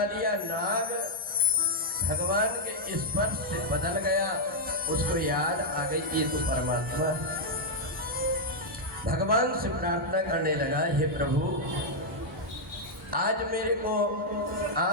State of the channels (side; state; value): both; normal; correlation -0.03